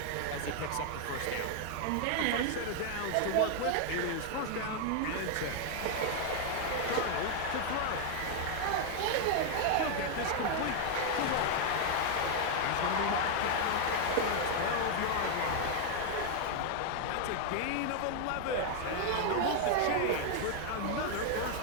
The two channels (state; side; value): different; both; correlation 0.00